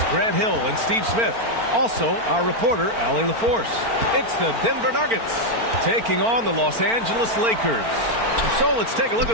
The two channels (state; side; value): late; left; 4.4 ms